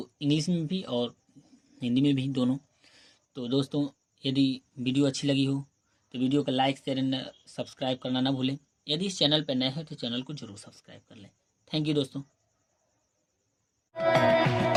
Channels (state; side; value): identical; both; correlation 1.00